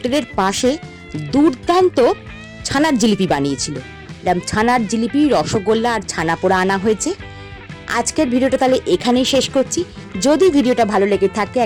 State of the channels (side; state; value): both; identical; correlation 1.00